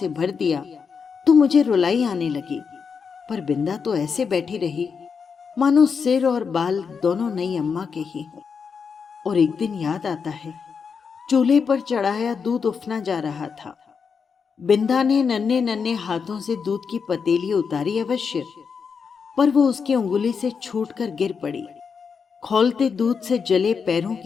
भर दिया तो मुझे रुलाई आने लगी। पर बिंदा तो ऐसे बैठी रही मानो सिर और बाल दोनों नई अम्मा के ही हों। और एक दिन याद आता है, चूल्हे पर चढ़ाया दूध उफना जा रहा था। बिंदा ने नन्हे नन्हे हाथों से दूध की पतीली उतारी अवश्य, पर वो उसकी उंगली से छूटकर गिर पड़ी। खौलते दूध से जले पैरों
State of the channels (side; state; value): right; quieter; 5.9 dB